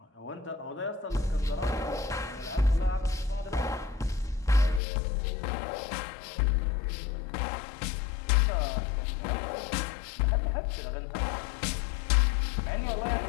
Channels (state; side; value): drops out; right; at 4.8 s